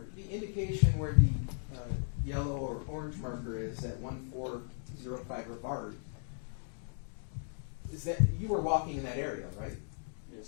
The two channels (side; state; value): right; silent; digital silence